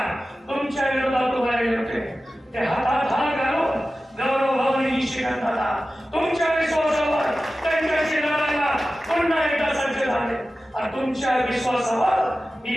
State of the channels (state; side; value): normal; both; correlation 0.95